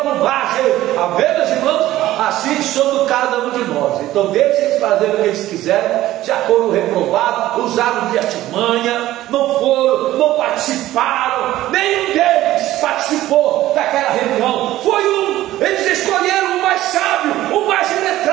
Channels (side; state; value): left; quieter; 15.0 dB